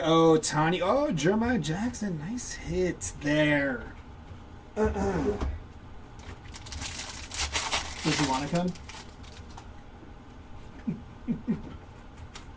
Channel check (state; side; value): identical; both; correlation 1.00